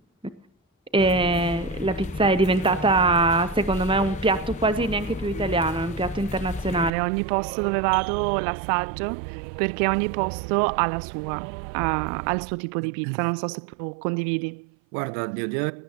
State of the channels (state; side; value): drops out; left; at 6.9 s